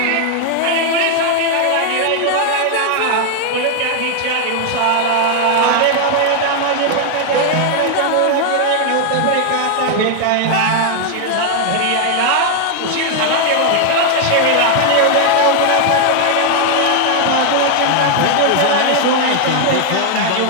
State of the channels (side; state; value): both; different; correlation 0.00